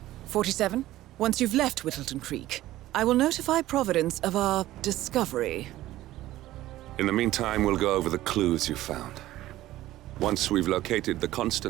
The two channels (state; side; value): quieter; left; 15.3 dB